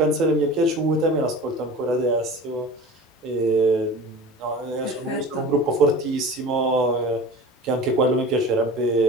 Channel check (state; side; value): normal; both; correlation 0.37